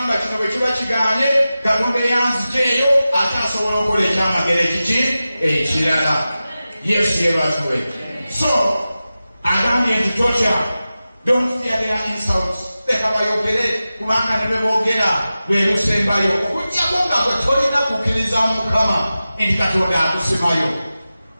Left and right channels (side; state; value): both; inverted; correlation -0.94